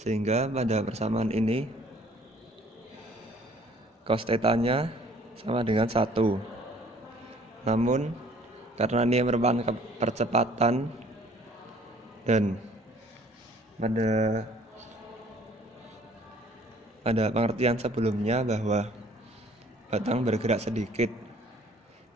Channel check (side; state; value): both; normal; correlation 0.56